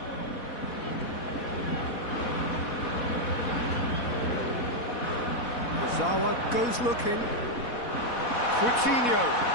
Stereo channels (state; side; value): late; right; 4.1 ms